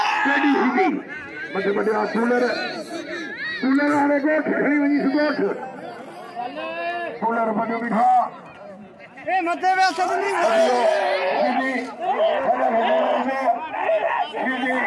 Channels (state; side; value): identical; both; correlation 1.00